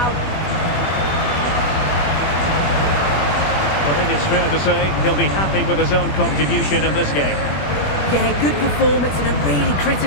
I think it's fair to say he'll be happy with his own contribution in this game. Yeah, good performance and a really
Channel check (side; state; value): right; late; 21 ms